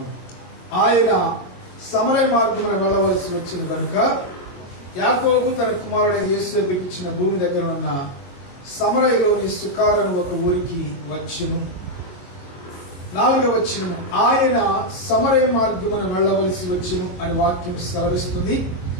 ఆయన సమరయ మార్గమున వెళ్ళవలసి వచ్చిన కనుక యాకోబు తన కుమారుడైన యేసేపుకి ఇచ్చిన భూమి దగ్గర ఉన్న సమరయలోని సుకార్ అను ఒక ఊరికి వచ్చును. 4వ వచనం, ఆయన సమరయ మార్గమున వెళ్ళవలసి వచ్చును అని వాక్యం సెలవిస్తుంది.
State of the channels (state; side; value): late; right; 22 ms